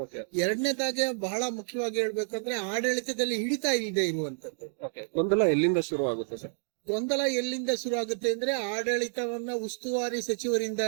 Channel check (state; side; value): silent; left; digital silence